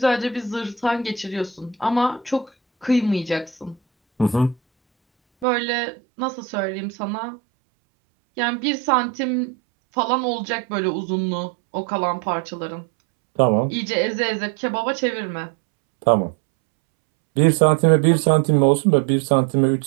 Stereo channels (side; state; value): left; drops out; at 5.5 s